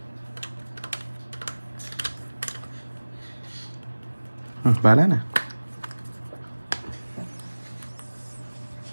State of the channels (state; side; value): inverted; both; correlation -1.00